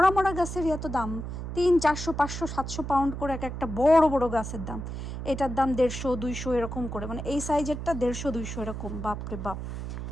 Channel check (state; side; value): noise; right; hum, 6 dB below the sound